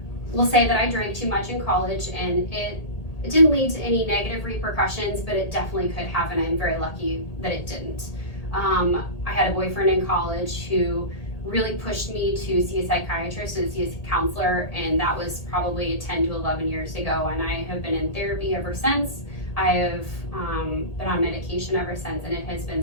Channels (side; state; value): right; late; 1.8 ms